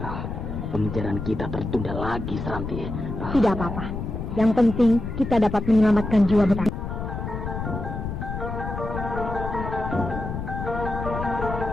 Pengejaran kita tertunda lagi, Seranti. Tidak apa-apa. Yang penting kita dapat menyelamatkan jiwa Bentang.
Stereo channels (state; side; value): noise; left; rumble, 5 dB below the sound